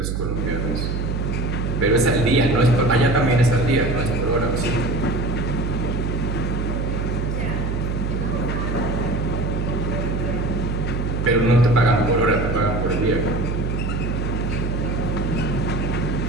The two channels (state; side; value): noise; right; hum, 1 dB below the sound